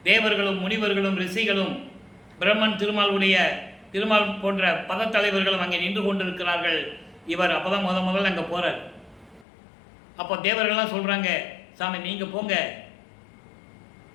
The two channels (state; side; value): drops out; right; at 9.5 s